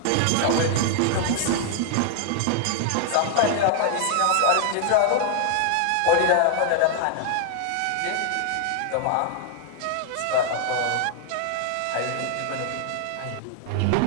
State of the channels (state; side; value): different; both; correlation 0.00